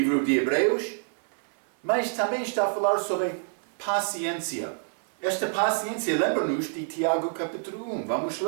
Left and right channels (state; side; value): silent; left; 60 dB below the other